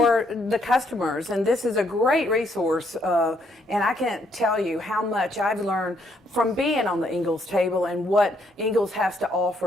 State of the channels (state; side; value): normal; both; correlation 0.71